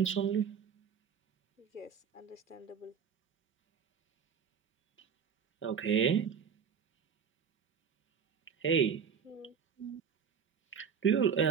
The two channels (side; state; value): left; quieter; 7.0 dB